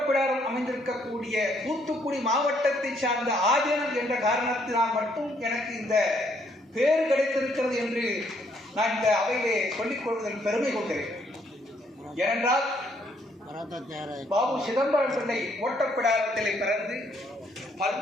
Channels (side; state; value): both; normal; correlation 0.69